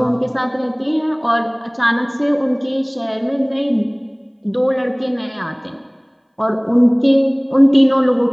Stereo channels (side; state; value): both; identical; correlation 1.00